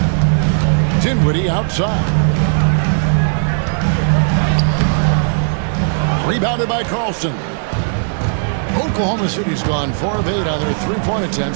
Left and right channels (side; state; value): left; silent; digital silence